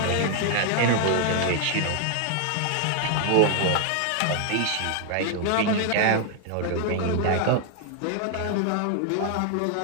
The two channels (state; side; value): different; both; correlation 0.00